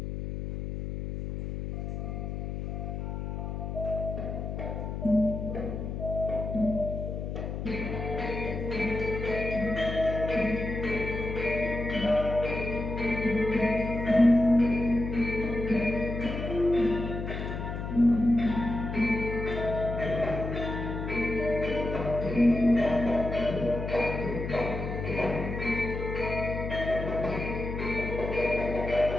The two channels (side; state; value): left; noise; hum, 5 dB below the sound